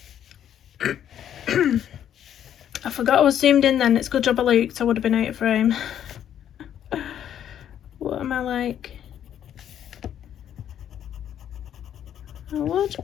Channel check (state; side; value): quieter; right; 10.0 dB